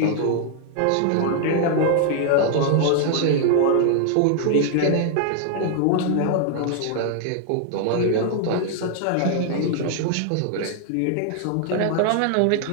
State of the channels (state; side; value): different; both; correlation 0.00